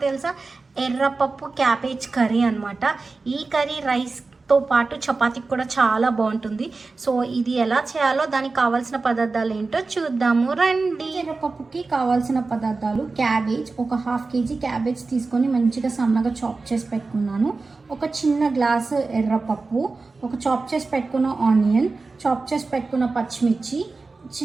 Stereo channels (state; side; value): quieter; left; 3.9 dB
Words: తెలుసా? ఎర్రపప్పు క్యాబేజ్ కర్రీ అనమాట. ఈ కర్రీ రైస్తో పాటు చపాతీకి కూడా చాలా బాగుంటుంది. సో ఇది ఎలా చేయాలో దానికి కావాల్సిన పదార్థాలు ఏంటో చూద్దాము రండి. ఎర్రపప్పుకి కావాల్సిన పదార్థాలు: క్యాబేజ్, ఒక 1/2 kg క్యాబేజ్ తీసుకొని మంచిగా సన్నగా చాప్ చేసి పెట్టుకున్నాను. ఒక చిన్న గ్లాసు ఎర్రపప్పు, ఒక చాప్ చేసి పెట్టుకున్న ఆనియన్, చాప్ చేసి పెట్టుకున్న పచ్చిమిర్చి,